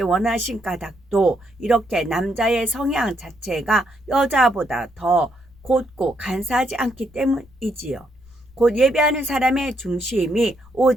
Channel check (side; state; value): left; noise; rumble, 27 dB below the sound